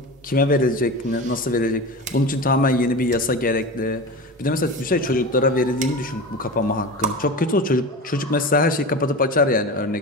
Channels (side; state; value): both; normal; correlation 0.28